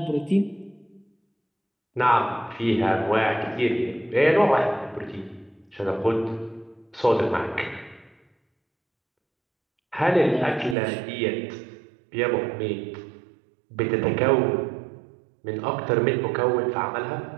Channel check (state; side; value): drops out; left; at 10.8 s